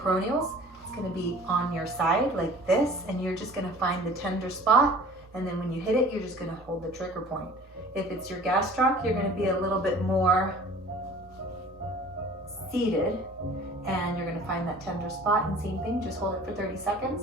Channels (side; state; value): both; normal; correlation 0.46